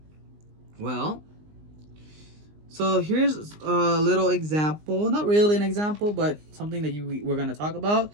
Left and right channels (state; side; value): late; left; 19 ms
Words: Well, so here's a little example. Not really an example, but something that we're going to talk about.